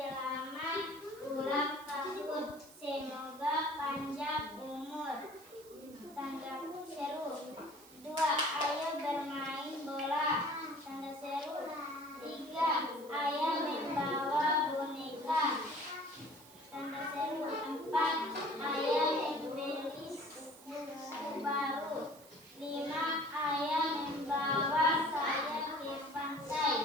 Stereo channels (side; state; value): right; noise; hiss, 21 dB below the sound